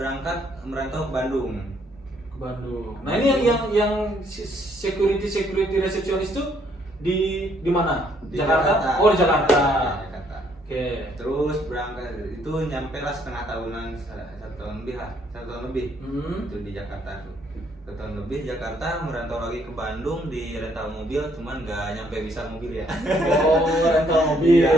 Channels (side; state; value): both; normal; correlation 0.68